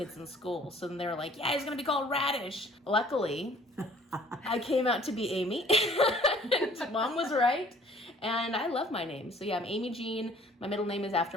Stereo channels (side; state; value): both; normal; correlation 0.55